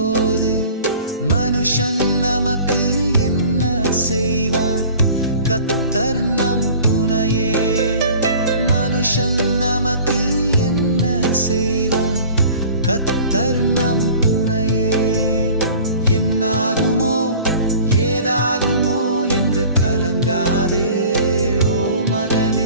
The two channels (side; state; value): both; inverted; correlation -0.45